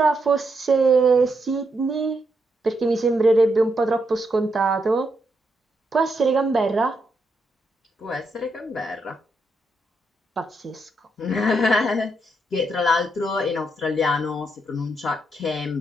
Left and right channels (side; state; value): both; normal; correlation 0.80